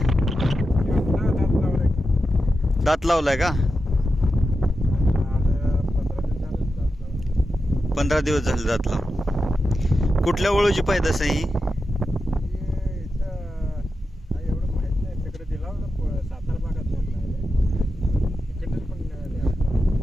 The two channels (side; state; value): both; normal; correlation 0.90